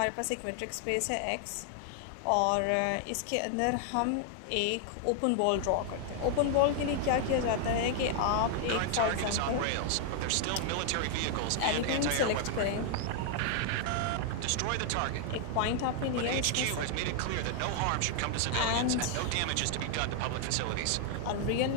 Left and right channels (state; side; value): different; both; correlation 0.00